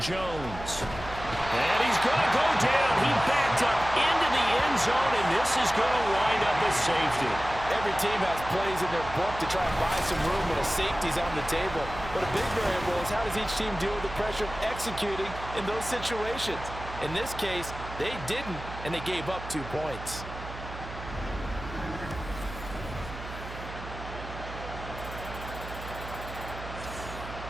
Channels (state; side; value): noise; right; hum, 11 dB below the sound